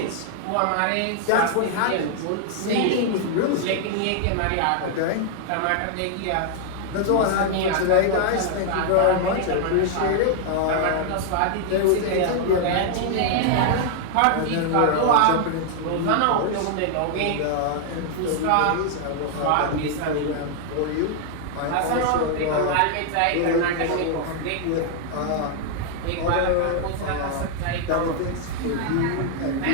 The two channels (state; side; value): different; both; correlation 0.00